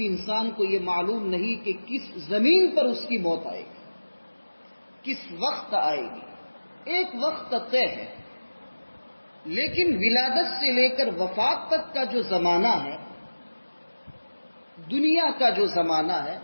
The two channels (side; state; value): both; inverted; correlation -1.00